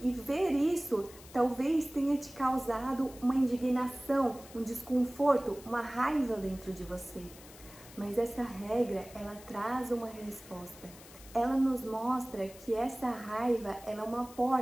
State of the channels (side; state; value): left; noise; hiss, 19 dB below the sound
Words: E ver isso talvez tenha te causado uma indignação, um desconforto, uma raiva dentro de você. Mas essa regra, ela traz uma resposta. Ela nos mostra que essa raiva ela é uma